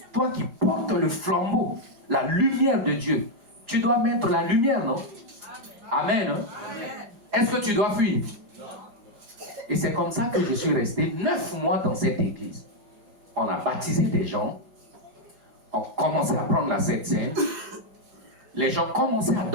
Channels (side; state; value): left; late; 4.9 ms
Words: toi qui portes le flambeau, la lumière de Dieu, tu dois mettre la lumière, non? Amen. Amen. Est-ce que tu dois fuir? Et c'est comme ça que je suis resté 9 mois dans cette église. On a baptisé des gens, on commençait à prendre la Sainte Seine, les gens commençaient à